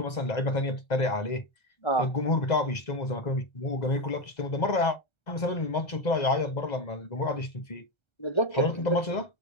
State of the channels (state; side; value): late; right; 2.0 ms